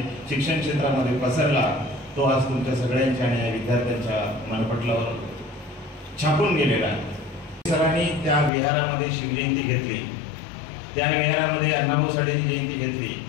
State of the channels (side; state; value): right; drops out; at 8.5 s